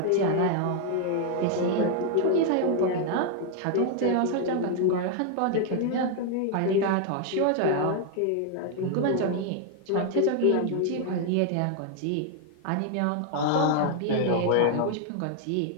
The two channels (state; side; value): different; both; correlation 0.00